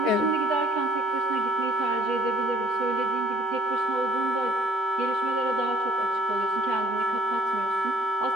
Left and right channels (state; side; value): normal; both; correlation 0.61